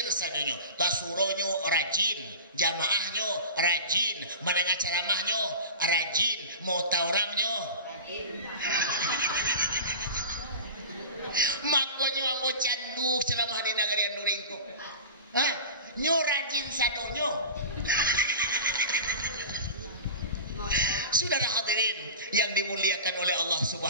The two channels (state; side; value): inverted; both; correlation -0.33